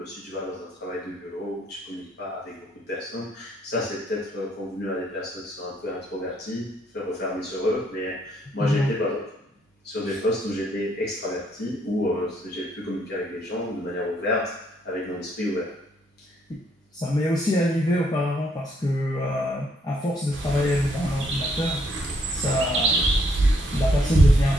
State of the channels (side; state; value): both; normal; correlation 0.70